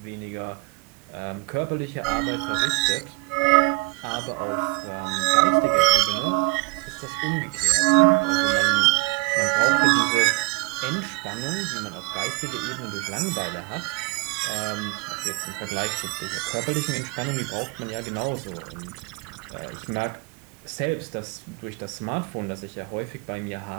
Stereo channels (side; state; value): left; quieter; 26.8 dB